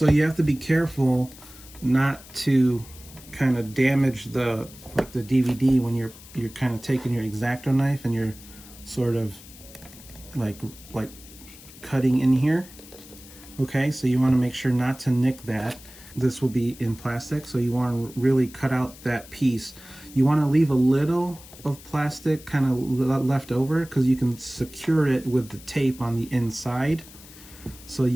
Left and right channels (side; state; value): left; noise; hiss, 19 dB below the sound